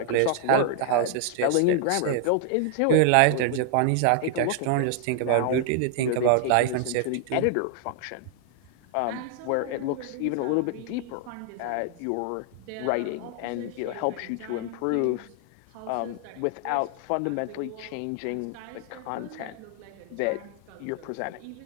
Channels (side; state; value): both; different; correlation 0.00